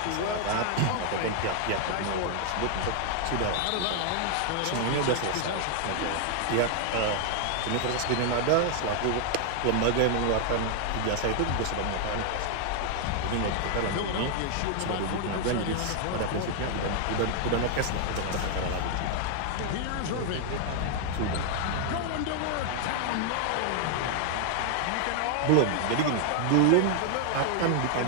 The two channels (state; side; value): different; both; correlation 0.00